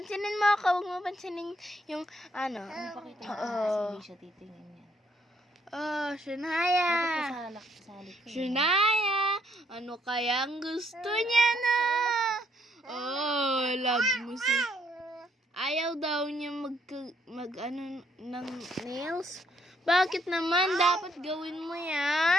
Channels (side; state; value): both; normal; correlation 0.69